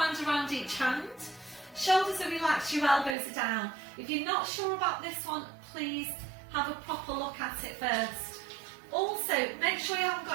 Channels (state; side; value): drops out; left; at 3.2 s